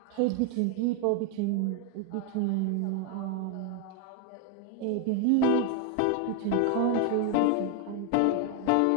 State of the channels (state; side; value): different; both; correlation 0.01